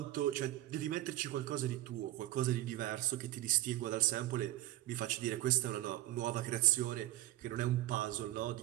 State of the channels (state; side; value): quieter; left; 15.4 dB